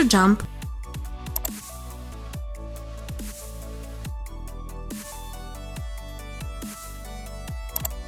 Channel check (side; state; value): both; identical; correlation 1.00